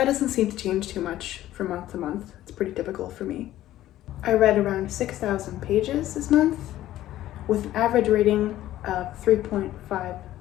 doesn't seem to change too much from month to month. It's pretty typical for me. I read around 6,000 pages this month with an average rating of 3.5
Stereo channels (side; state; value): right; quieter; 14.0 dB